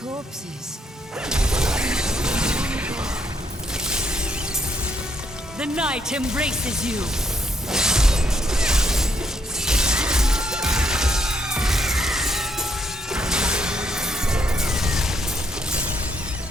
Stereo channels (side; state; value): both; normal; correlation 0.74